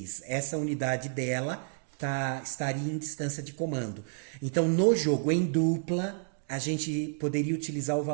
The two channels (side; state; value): left; silent; digital silence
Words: essa unidade dela estaria em distância de comando. Então, no jogo em dupla, a gente poderia utilizar o